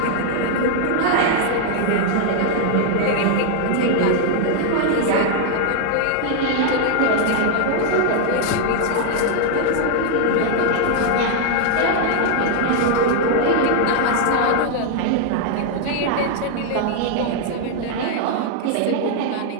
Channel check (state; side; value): different; both; correlation 0.00